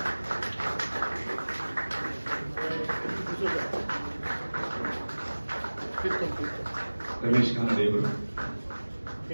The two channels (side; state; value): both; inverted; correlation -1.00